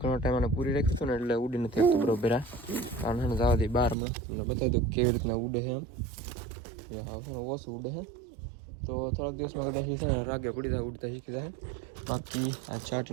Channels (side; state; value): left; drops out; at 4.0 s